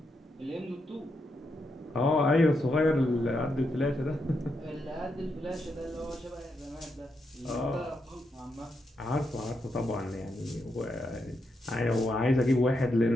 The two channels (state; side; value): normal; both; correlation 0.82